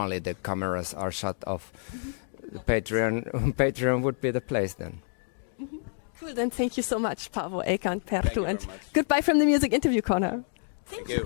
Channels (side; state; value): right; silent; digital silence